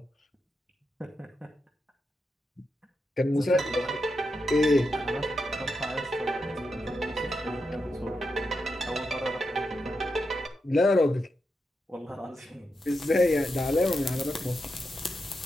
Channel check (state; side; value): normal; both; correlation 0.86